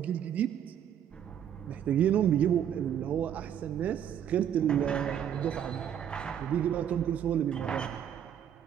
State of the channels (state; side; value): quieter; left; 9.4 dB